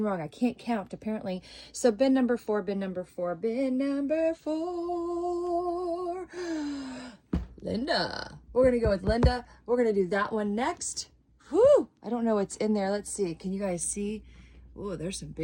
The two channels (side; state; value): both; identical; correlation 1.00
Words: wrong. I can't count, apparently. So bin number 4, bin number 4, bin number 4. Linda. We're going to go with Linda. We're going to do that one next. Whew. I don't know what's in there. Let's see. Can you guys see? Oh, there's some